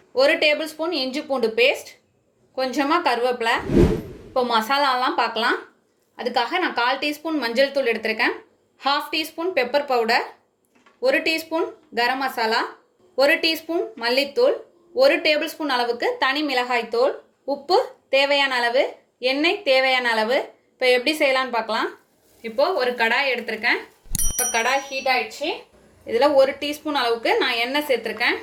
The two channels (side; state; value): both; identical; correlation 1.00